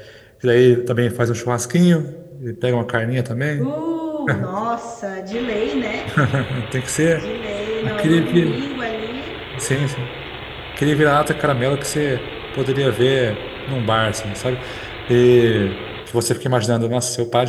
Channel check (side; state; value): both; identical; correlation 1.00